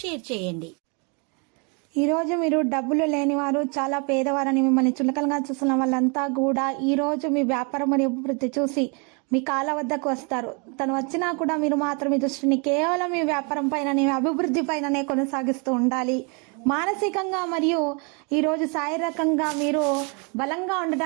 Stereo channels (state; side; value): quieter; left; 34.5 dB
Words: షేర్ చేయండి. ఈరోజు మీరు డబ్బులు లేనివారు, చాలా పేదవారని మిమ్మల్ని చులకనగా చూస్తున్న వాళ్ళంతా కూడా ఈరోజు మీ వ్యాపారం మరియు అభివృద్ధి చూసి మీ కాళ్ళ వద్దకు వస్తారు. తను వచ్చినా కూడా మీరు మాత్రం మీ దృష్టిని కేవలం మీ వ్యాపారం పైననే, అభివృద్ధి పైననే కొనసాగిస్తూ ఉండాలి. మానసికంగా మరియు ఈరోజు శారీరకంగా మీరు బలంగా